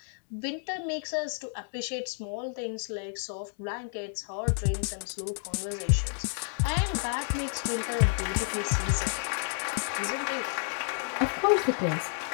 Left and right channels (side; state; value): right; silent; 57 dB below the other